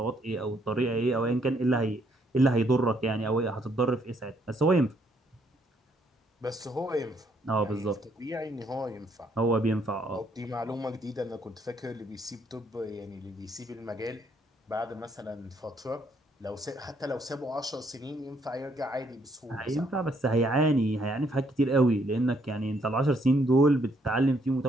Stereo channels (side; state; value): both; normal; correlation 0.70